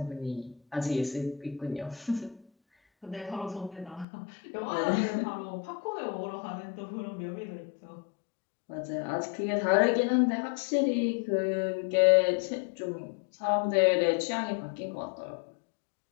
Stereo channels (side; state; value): right; drops out; at 4.0 s